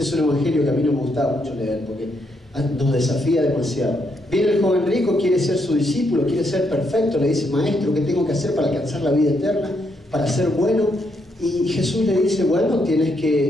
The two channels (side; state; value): both; normal; correlation 0.77